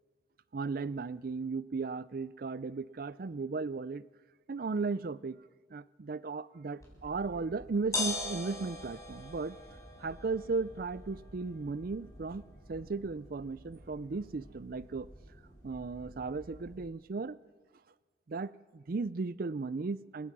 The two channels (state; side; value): quieter; left; 3.1 dB